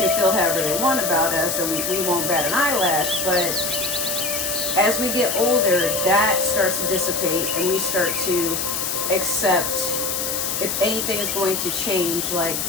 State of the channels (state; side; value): noise; left; hiss, 1 dB below the sound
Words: feel however they want about us and we won't bat an eyelash. But as we get older, that starts to dissipate and we start to accept if anything is going to change. Like